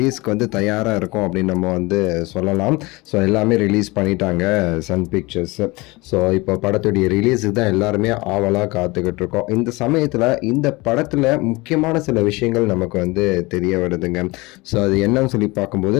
வந்து தயாராக இருக்கும் அப்படின்னு நம்ம வந்து சொல்லலாம். ஸோ எல்லாமே ரிலீஸ் பண்ணிட்டாங்க சன் பிக்சர்ஸ். ஸோ இப்போ படத்துடைய ரிலீஸுக்கு தான் எல்லாருமே ஆவலாக காத்துக்கிட்டு இருக்கோம். இந்த சமயத்தில் இந்த படத்தில் முக்கியமான சில விஷயங்கள் நமக்கு வந்து தெரிய வருதுங்க. ஸோ அது என்னன்னு சொல்லி பார்க்கும்போது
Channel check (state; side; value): quieter; right; 23.6 dB